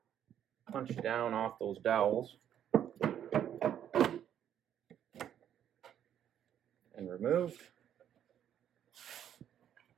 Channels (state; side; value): quieter; left; 10.0 dB